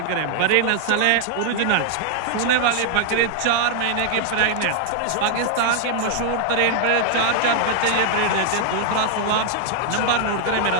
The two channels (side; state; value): both; different; correlation -0.01